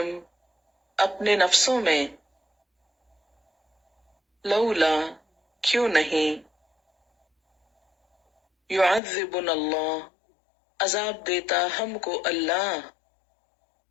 اپنے نفسوں میں، لولا کیوں نہیں، یعذبنا اللہ عذاب دیتا ہم کو اللہ،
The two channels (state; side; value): drops out; right; at 9.0 s